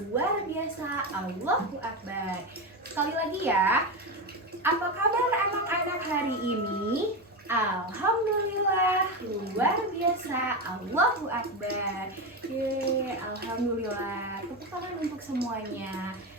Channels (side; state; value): both; normal; correlation 0.16